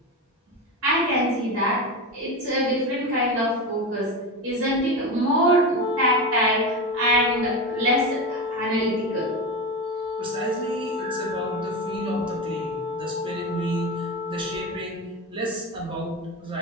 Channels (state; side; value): normal; both; correlation 0.21